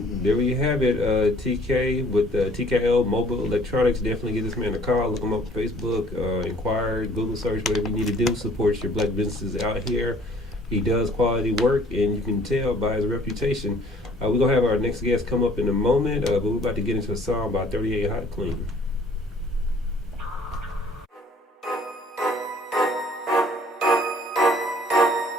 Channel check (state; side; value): normal; both; correlation 0.57